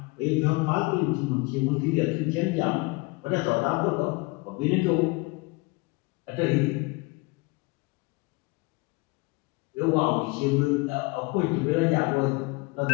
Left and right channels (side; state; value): right; quieter; 25.7 dB